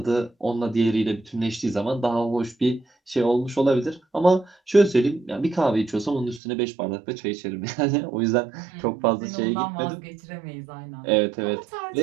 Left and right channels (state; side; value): drops out; left; at 6.4 s